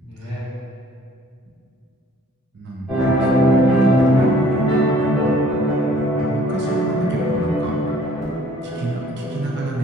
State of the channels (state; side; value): normal; both; correlation 0.56